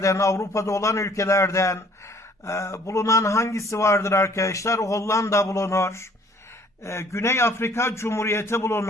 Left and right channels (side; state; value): both; normal; correlation 0.57